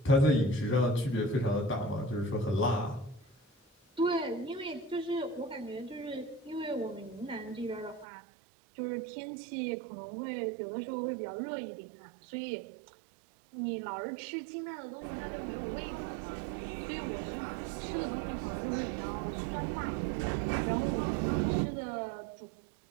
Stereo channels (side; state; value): left; drops out; at 8.1 s